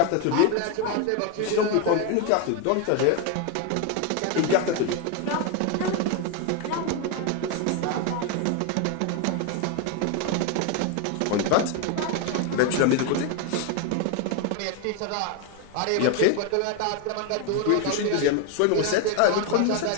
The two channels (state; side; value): different; both; correlation 0.01